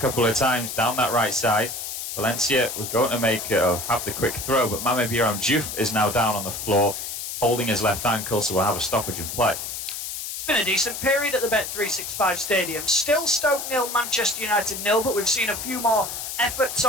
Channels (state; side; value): noise; left; hiss, 6 dB below the sound